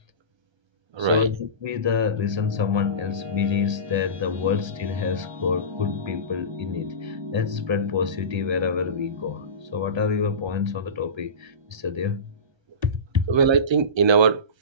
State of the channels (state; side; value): late; left; 1.3 ms